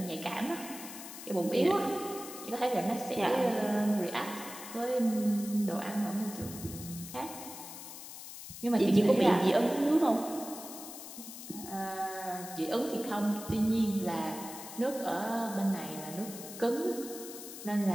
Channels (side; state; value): left; noise; hiss, 12 dB below the sound